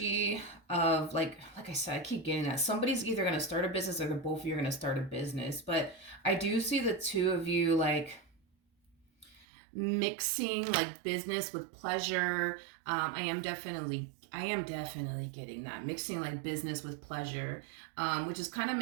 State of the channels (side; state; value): left; drops out; at 9.5 s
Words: of like I said, I keep getting that. Somebody's either going to start a business, or the both of you are going to start a business. But I do see the two of you like mixing like business with pleasure. I am definitely getting that, mixing like business with pleasure, which is kind of